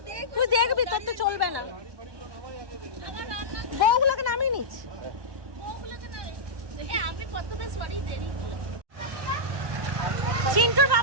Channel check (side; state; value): left; late; 1.1 ms